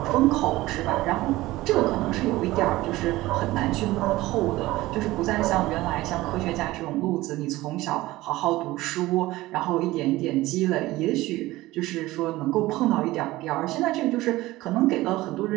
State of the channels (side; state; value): left; quieter; 18.0 dB